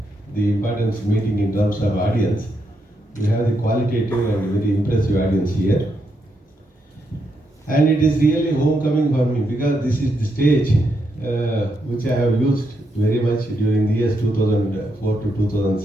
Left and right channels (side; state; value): both; normal; correlation 0.81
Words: the importance meeting in terms of audience. We have the qualitative and very impressive audience here. And it is really homecoming for me because this is the stage which I have used very much during the years 2004 to